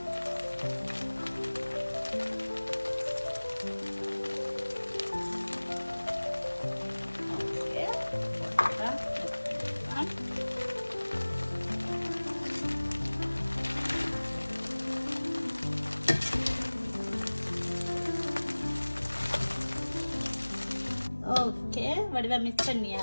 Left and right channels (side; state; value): both; inverted; correlation -1.00